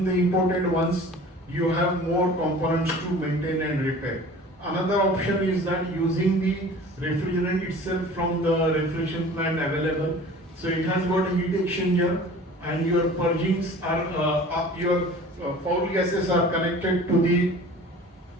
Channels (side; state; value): both; normal; correlation 0.43